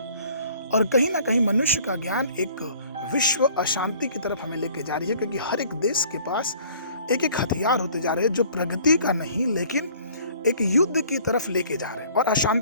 और कहीं ना कहीं मनुष्य का ज्ञान एक विश्व अशांति की तरफ हमें लेके जा रही है, क्योंकि हर एक देश के पास एक एक हथियार होते जा रहे हैं जो प्रगति का नहीं लेकिन एक युद्ध की तरफ लेके जा रहे हैं और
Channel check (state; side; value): inverted; both; correlation -0.54